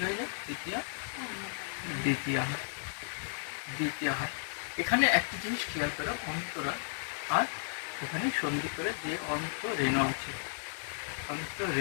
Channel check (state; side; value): silent; right; digital silence